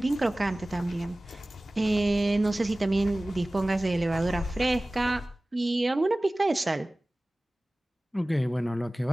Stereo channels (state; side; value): normal; both; correlation 0.98